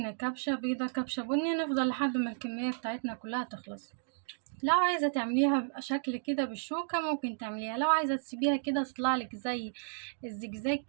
كبشة بيضة كبشة بني، نفضل لحد ما الكمية بتاعتنا كلها تخلص. لو عايزة تعمليها بشكل كده بالشوكة ممكن تعمليها، لو عايزة تسيبيها كده تطلعلك زي الزجزاج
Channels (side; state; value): left; silent; digital silence